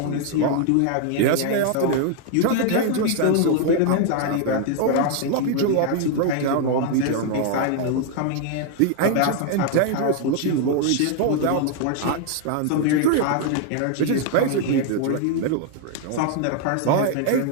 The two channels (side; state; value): both; different; correlation 0.00